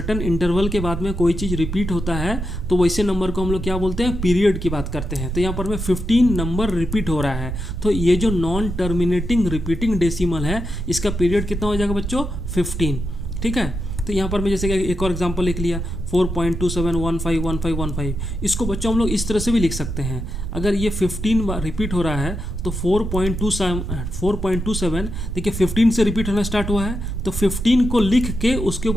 इंटरवल के बाद में कोई चीज़ रिपीट होता है तो वैसे नंबर को हम लोग क्या बोलते हैं, पीरियड की बात करते हैं। तो यहाँ पर में 15 नंबर रिपीट हो रहा है, तो ये जो नॉन टर्मिनेटिंग रिपीटिंग डेसिमल है इसका पीरियड कितना हो जाएगा बच्चों, 15, ठीक है। तो यहाँ पर मैं जैसे कि एक और एग्जांपल लिख लिया 4.27151515। इसको बच्चों हम लोग इस तरह से भी लिख सकते हैं। अगर ये 15 बार रिपीट हो रहा है तो 4.27 देखिए 15 से रिपीट होना स्टार्ट हुआ है, तो 15 को लिख के उसके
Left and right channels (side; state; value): right; noise; rumble, 4 dB below the sound